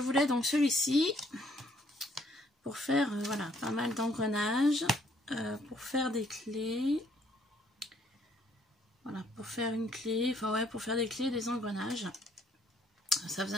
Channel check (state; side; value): normal; both; correlation 0.65